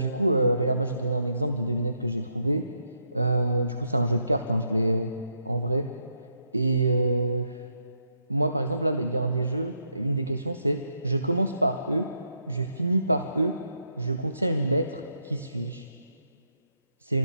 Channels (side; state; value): both; inverted; correlation -0.78